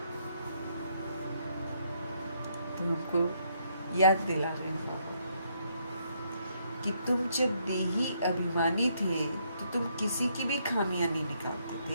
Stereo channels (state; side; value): inverted; both; correlation -0.72